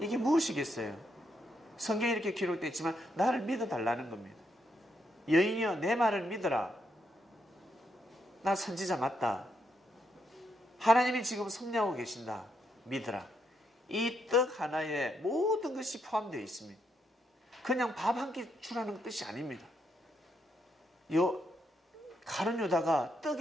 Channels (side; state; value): both; normal; correlation 0.78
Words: 무엇이겠어요? 성경에 이렇게 기록되어 있지만 나를 믿어달라는 겁니다. 여인이여 내 말을 믿어라. 나 선지자 맞다. 하나님이 지금 섭리하고 계신다. 믿어라. 이 떡 하나에 모든 것이 포함되어 있습니다. 그냥 밥 한 끼 주라는 뜻이 아닙니다. 가룟 유다가